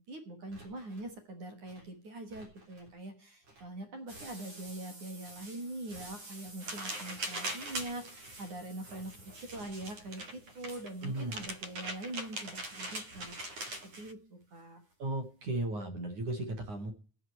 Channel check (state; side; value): late; left; 9.7 ms